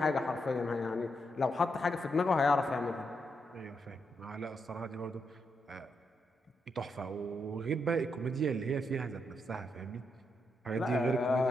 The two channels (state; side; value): normal; both; correlation 0.81